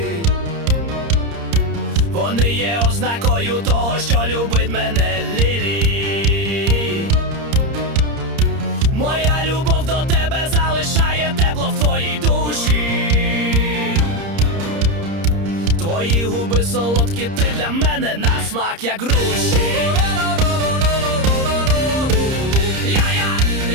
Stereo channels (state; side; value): late; left; 30 ms